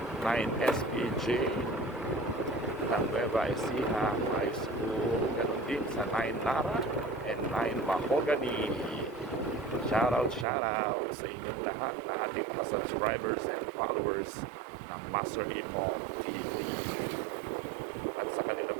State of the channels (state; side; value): drops out; left; at 10.5 s